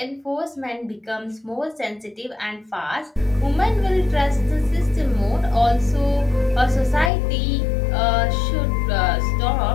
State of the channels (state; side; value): drops out; right; at 7.1 s